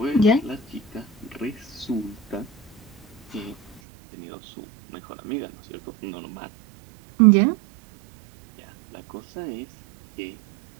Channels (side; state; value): left; drops out; at 3.8 s